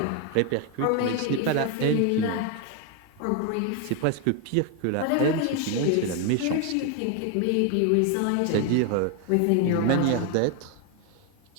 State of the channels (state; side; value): different; both; correlation 0.01